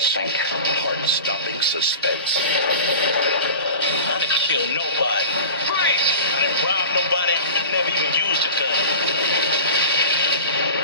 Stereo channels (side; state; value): both; inverted; correlation -0.34